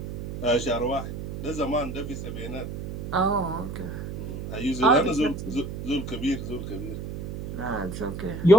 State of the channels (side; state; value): right; noise; hum, 7 dB below the sound